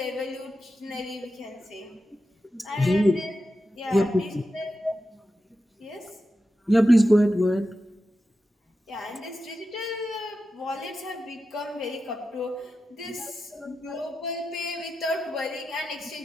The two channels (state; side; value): normal; both; correlation 0.91